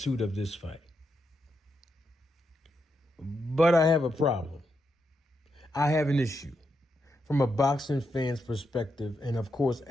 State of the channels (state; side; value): normal; both; correlation 0.83